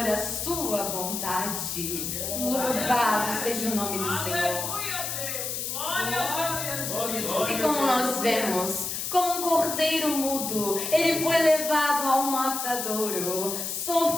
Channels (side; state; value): left; noise; hiss, 3 dB below the sound